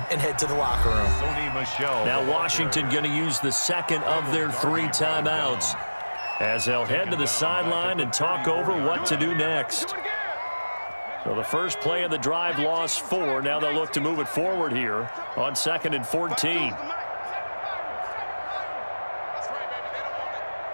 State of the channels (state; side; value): inverted; both; correlation -1.00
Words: and head to the locker room. Now Washington going to use the 2nd of their 3 timeouts as they'll head to the sideline and talk over what to do next. So the first play of the drive lost 4. Now they'll look to move it forward here on 2nd and 14.